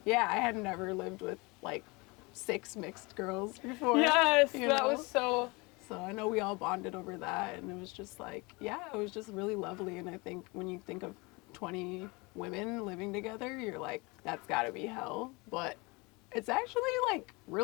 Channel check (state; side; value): quieter; right; 26.2 dB